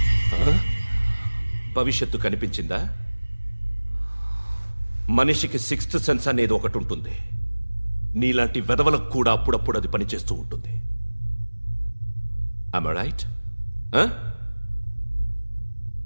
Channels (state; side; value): inverted; both; correlation -1.00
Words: భవిష్యత్తు కనిపించిందా? మనిషికి 6th సెన్స్ అనేది ఒకటి ఉంటుంది. నీలాంటి వెధవలకు కూడా అప్పుడప్పుడు అది పనిచేస్తూ ఉంటుంది. Am I right?